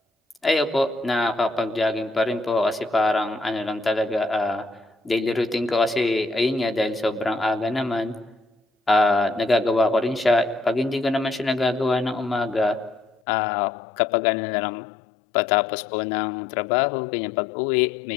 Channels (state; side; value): drops out; right; at 13.2 s